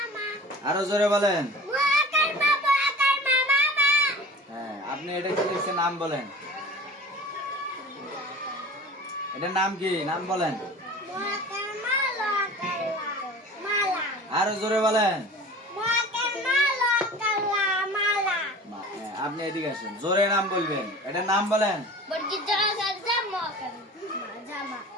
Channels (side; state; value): both; normal; correlation 0.40